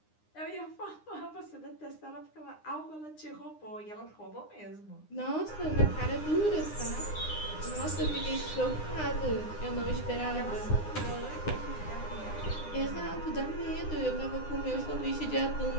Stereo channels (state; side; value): late; right; 9.8 ms